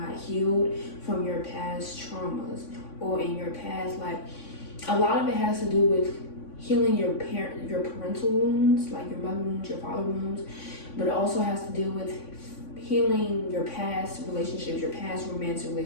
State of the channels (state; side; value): late; right; 3.5 ms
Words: healed from your past traumas or in your past. Like, a lot of it has to do with healing your parental wounds, like your mother wounds, your father wounds, but it also has to do with healing your past relationships, your past romantic